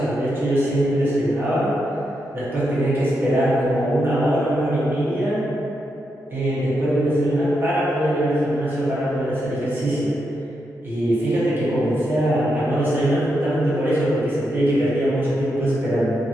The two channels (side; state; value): both; normal; correlation 0.83